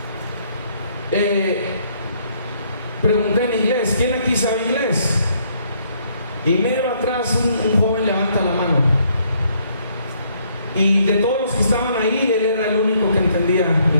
pregunté en inglés: ¿quién aquí sabe inglés? Y medio atrás un joven levanta la mano. Y de todos los que estaban ahí, él era el único que entendía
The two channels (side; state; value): both; inverted; correlation -0.68